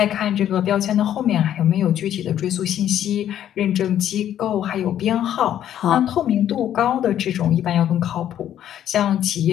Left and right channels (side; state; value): right; quieter; 10.8 dB